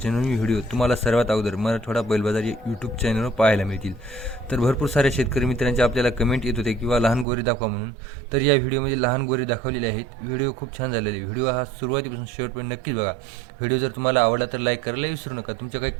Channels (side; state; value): left; drops out; at 7.2 s